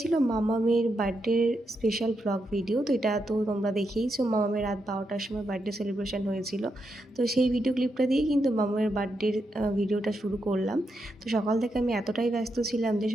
ছিল মামামের বার্থডের স্পেশাল ব্লগ ভিডিও। তো এটা তো তোমরা দেখেইছো, মামামের রাত 12টার সময় বার্থডে সেলিব্রেশন হয়েছিল। তো সেই ভিডিও ক্লিপটা দিয়েই কিন্তু মামামের বার্থডের ভিডিওটা শুরু করলাম। তো সকাল থেকে আমি এতটাই ব্যস্ত ছিলাম যে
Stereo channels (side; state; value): both; normal; correlation 0.83